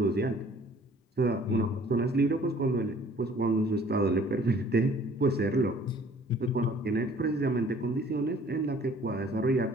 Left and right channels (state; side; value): normal; both; correlation 0.55